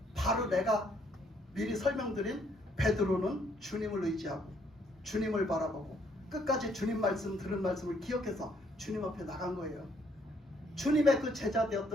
바로 내가 미리 설명드린 베드로는 주님을 의지하고 주님을 바라보고 끝까지 주님 말씀 들은 말씀을 기억해서 주님 앞에 나간 거예요. 주님의 그 제자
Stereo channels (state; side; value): normal; both; correlation 0.68